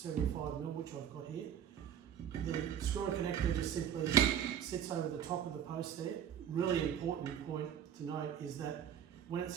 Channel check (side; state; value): left; quieter; 9.2 dB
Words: which I've got here. The screw-on connector just simply sits over the top of the post there. Really important point to note is that when